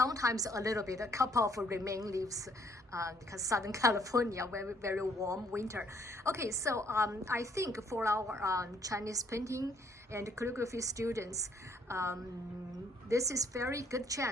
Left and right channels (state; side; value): normal; both; correlation 0.66